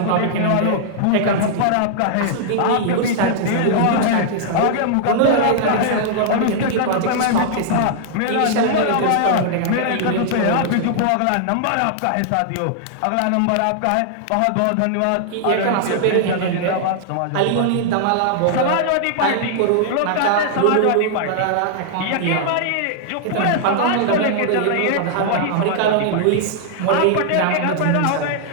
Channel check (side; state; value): both; different; correlation -0.01